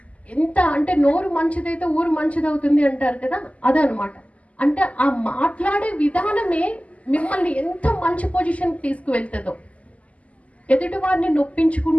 ఎంత అంటే నోరు మంచిదైతే ఊరు మంచిదవుతుంది అంటారు కదా, అదనమాట. అంటే ఆ మాట్లాడే విధానమే మిమ్మల్ని ఎంత మంచి పొజిషన్కి తీసుకువెళ్తుందో. ఎదుటి వారిని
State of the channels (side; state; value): right; late; 0.067 ms